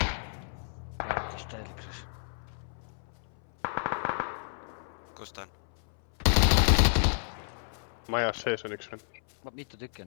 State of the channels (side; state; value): right; silent; 57 dB below the other